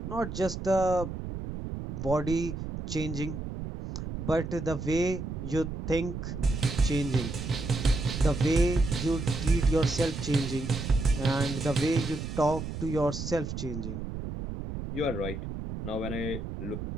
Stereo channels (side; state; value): right; noise; rumble, 6 dB below the sound